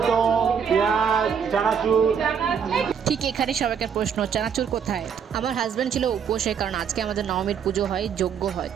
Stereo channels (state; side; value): quieter; left; 7.2 dB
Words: পেঁয়াজ, চানাচুর। ঠিক এখানে সবাইকার প্রশ্ন, চানাচুর কোথায়? আমার হাজব্যান্ড ছিল উপোসে, কারণ আজকে আমাদের নবমীর পুজো হয়, যজ্ঞ হয়।